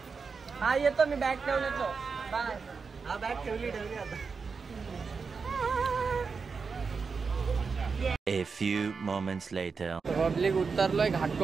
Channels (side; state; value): left; quieter; 5.1 dB